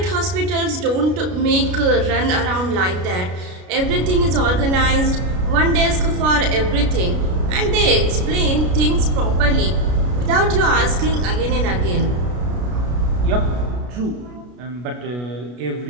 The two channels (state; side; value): late; left; 33 ms